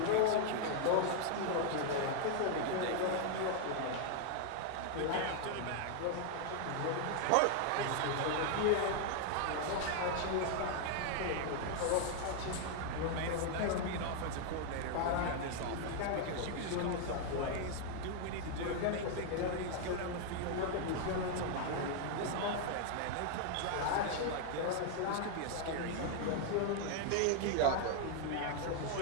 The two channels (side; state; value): both; different; correlation 0.00